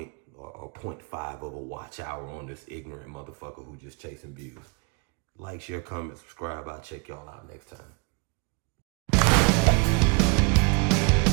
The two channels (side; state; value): left; quieter; 31.5 dB